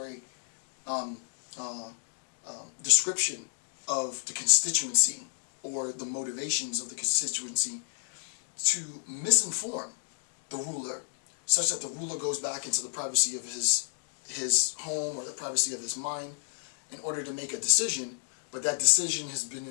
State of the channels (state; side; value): silent; right; digital silence